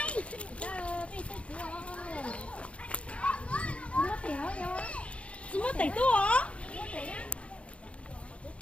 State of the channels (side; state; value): right; late; 0.061 ms